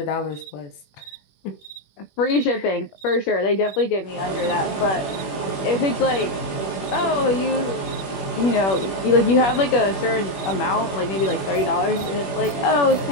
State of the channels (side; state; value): right; late; 21 ms